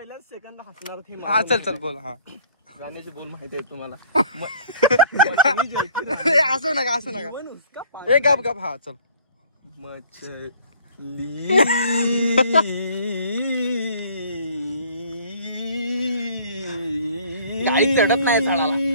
सेकंद हसणार हा चल बोल हा गाण्याचे बोल माहिती आहेत तुम्हाला असं नका ए गप हा चल मछली गाडी चढत नाही झाडाला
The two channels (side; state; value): both; inverted; correlation -0.54